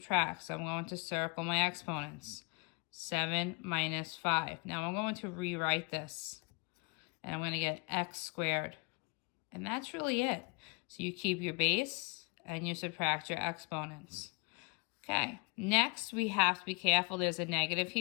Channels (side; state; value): right; quieter; 31.3 dB